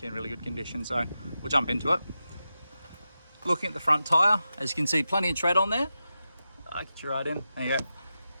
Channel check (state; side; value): inverted; both; correlation -0.91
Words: in really good condition, so we'll jump into it. Looking at the front tyre, as you can see, plenty of tread on there. I'll get you right in, there you go.